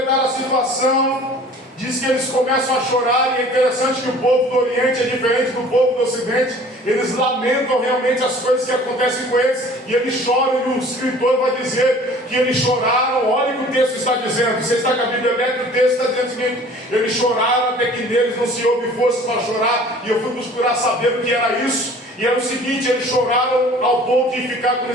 a situação, diz que eles começam a chorar. E é interessante que o povo do Oriente é diferente do povo do Ocidente. Eles lamentam realmente as coisas que acontecem com eles, e eles choram, e o escritor vai dizer que eles choraram. Olha o que o texto está dizendo. Você está com a Bíblia aberta, o texto está dizendo o seguinte: eles choraram até que neles não se houve força para chorar. E eu fui procurar saber o que era isso, e era o seguinte: eles choraram ao ponto de ficar como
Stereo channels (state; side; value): normal; both; correlation 0.48